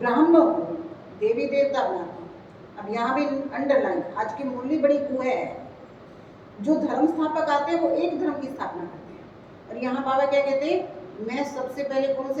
को देवी देवता बनाता हूँ। अब यहाँ भी अंडरलाइन, आज की मुरली बड़ी कुएं है। जो धर्म स्थापक आते हैं वो एक धर्म की स्थापना करते हैं, और यहाँ बाबा क्या कहते हैं मैं सबसे पहले कौन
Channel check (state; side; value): identical; both; correlation 1.00